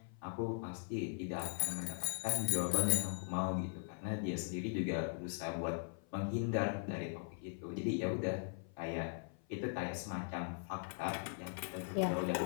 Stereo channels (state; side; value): silent; right; 51 dB below the other